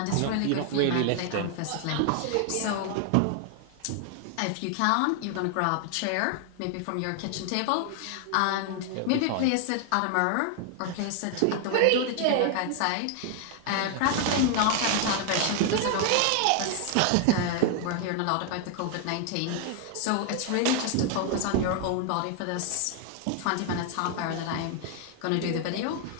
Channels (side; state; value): both; different; correlation 0.00